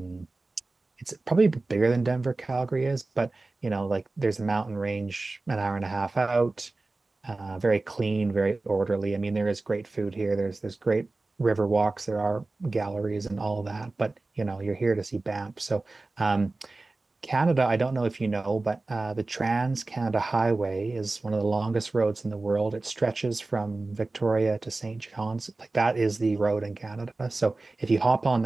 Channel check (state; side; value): quieter; left; 3.3 dB